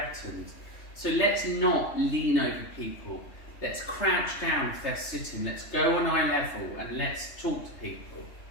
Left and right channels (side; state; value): right; late; 3.3 ms